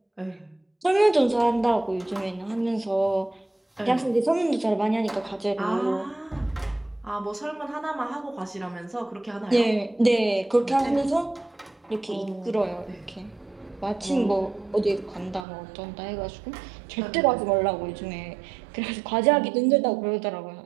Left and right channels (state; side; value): drops out; left; at 15.5 s